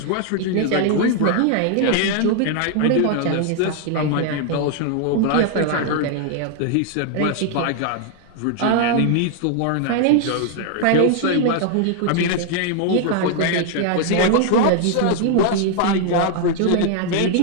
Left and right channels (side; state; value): both; different; correlation 0.00